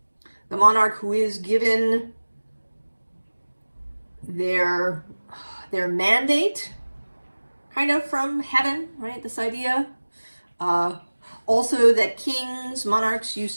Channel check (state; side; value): inverted; both; correlation -1.00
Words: The monarch who is given their mandate kind of from heaven, right? This idea. Also that kings, monarchs